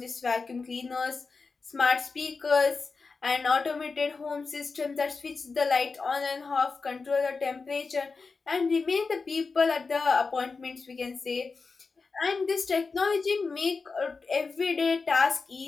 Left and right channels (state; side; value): quieter; right; 4.4 dB